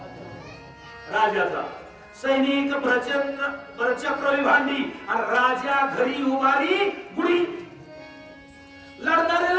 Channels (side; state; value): both; identical; correlation 1.00